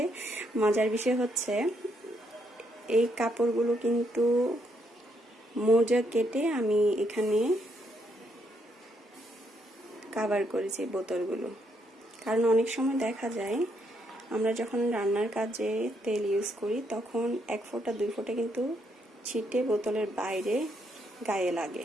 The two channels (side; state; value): both; normal; correlation 0.75